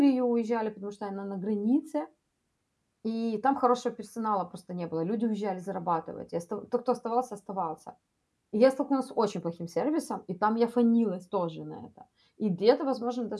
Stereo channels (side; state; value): both; identical; correlation 1.00